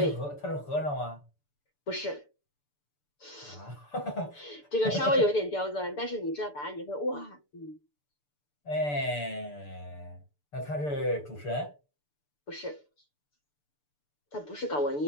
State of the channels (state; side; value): late; right; 6.8 ms